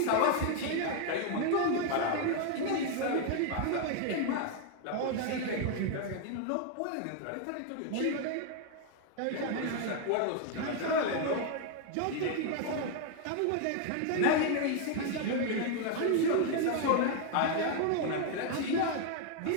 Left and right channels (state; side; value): different; both; correlation 0.01